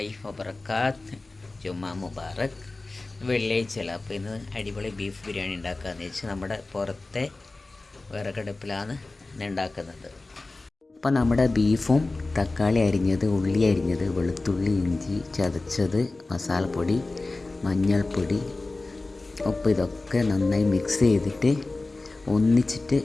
വബർക്കാത്ത്. ജുമാ മുബാറക്. വെള്ളിയാഴ്ചയല്ല, അപ്പോൾ ഇന്ന് അടിപൊളി ബീഫ് ബിരിയാണി ഉണ്ടാക്കാമെന്ന് വെച്ച് നമ്മുടെ പുറത്തെ വിറകടുപ്പിലാണ് ഇന്ന് ഉണ്ടാക്കുന്നത്. അപ്പോൾ നമ്മുടെ ബീഫും തക്കാളി അരിഞ്ഞത്, ഉള്ളി അരിഞ്ഞത്, വെളുത്തുള്ളി, ഇഞ്ചി ചതച്ചത്, മസാലപ്പൊടി, മഞ്ഞൾപ്പൊടി, ഉപ്പ് ഇതൊക്കെ നന്നായി മിക്സ് ചെയ്തിട്ട് ഒന്നിച്ചിട്ട്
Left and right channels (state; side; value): quieter; right; 3.2 dB